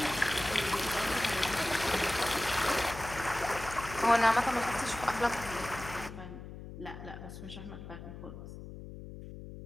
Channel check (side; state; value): left; noise; hum, 12 dB below the sound